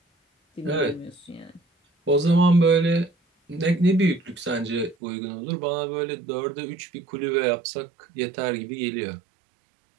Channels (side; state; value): left; drops out; at 5.0 s